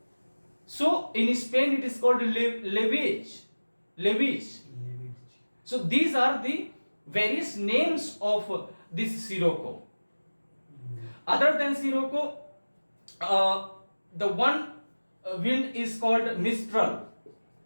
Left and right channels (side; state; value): both; inverted; correlation -1.00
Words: So in Spain, it is called Levage. So these are the various names of this Sirocco. Other than Sirocco, the one wind is called Mistral.